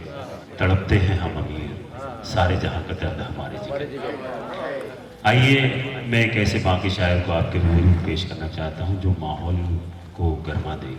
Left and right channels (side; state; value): both; identical; correlation 1.00